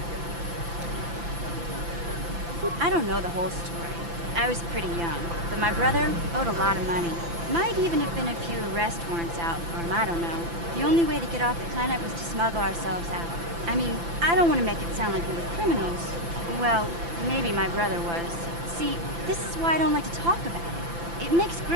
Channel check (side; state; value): left; late; 5.9 ms